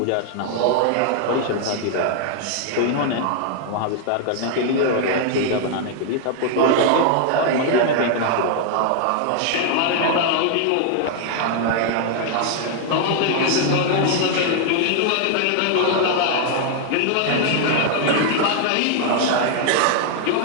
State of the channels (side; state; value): both; different; correlation 0.00